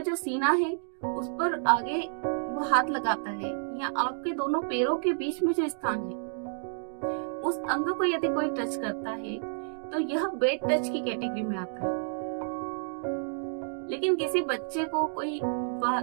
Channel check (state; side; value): silent; left; digital silence